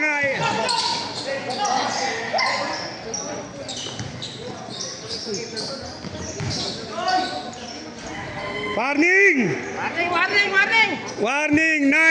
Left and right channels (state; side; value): identical; both; correlation 1.00